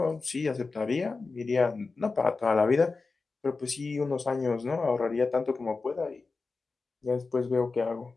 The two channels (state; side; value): quieter; right; 4.0 dB